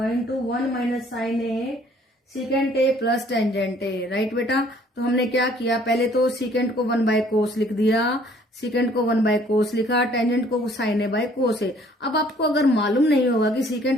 1 minus sine A, secant A plus tangent A, right बेटा। तो हमने क्या किया? पहले तो सीकेंट को 1 बाय कोस लिख दिया, सीकेंट को 1 बाय कोस लिखा, टेंजेंट को sign A by cos A. अब आपको अगर मालूम नहीं होगा कि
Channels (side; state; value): both; normal; correlation 0.59